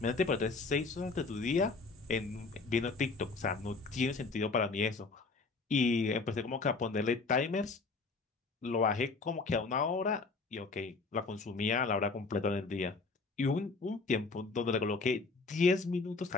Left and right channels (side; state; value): right; quieter; 4.0 dB